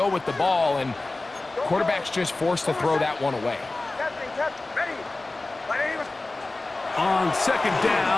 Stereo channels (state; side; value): quieter; right; 3.1 dB